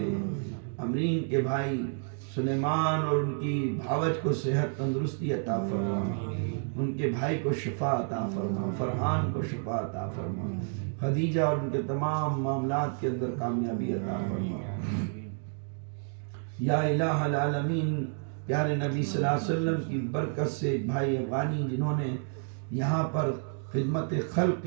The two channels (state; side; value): silent; left; 55 dB below the other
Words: امرین کے بھائی سلیمان اور ان کی بھاوج کو صحت تندرستی عطا فرما، ان کے بھائی کو شفا عطا فرما، فرحان کو شفا عطا فرما، خدیجہ اور ان کے تمام معاملات کے اندر کامیابی عطا فرما، یا الہ العالمین پیارے نبی صلی اللہ علیہ وسلم کی برکت سے بھائی افغانی جنہوں نے یہاں پر خدمت خلق